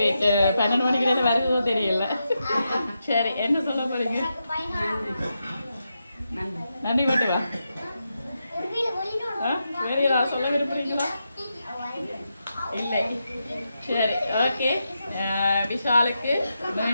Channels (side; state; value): both; inverted; correlation -0.86